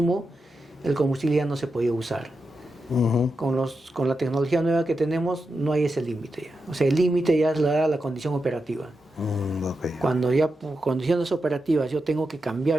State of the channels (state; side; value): normal; both; correlation 0.88